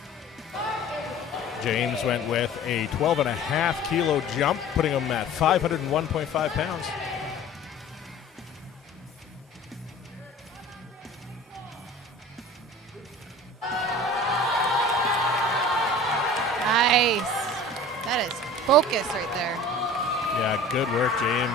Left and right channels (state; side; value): normal; both; correlation 0.42